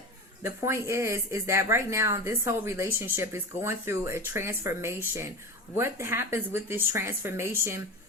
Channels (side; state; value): both; normal; correlation 0.27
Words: the point is that right now, this whole relationship is going through a transformation. What happens with this transformation?